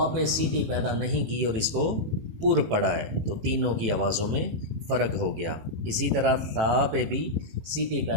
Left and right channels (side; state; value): left; late; 18 ms